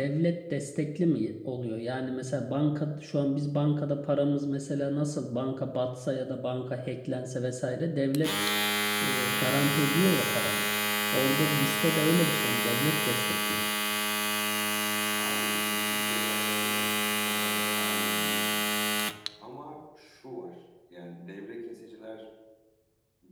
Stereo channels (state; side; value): identical; both; correlation 1.00